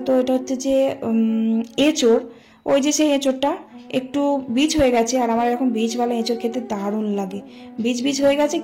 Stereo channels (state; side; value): identical; both; correlation 1.00